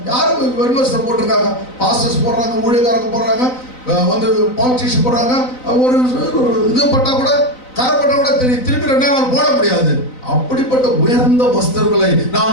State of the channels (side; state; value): right; late; 4.0 ms